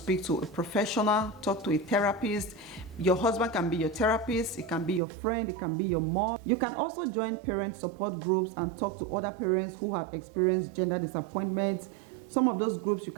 to a professional, talk to a therapist. Your husband can be your therapist, it can be your friend, it can be your mom. You can also join parent support groups and talk to other parents who have experienced gender disappointment. Some of those groups, you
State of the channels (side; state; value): left; drops out; at 5.0 s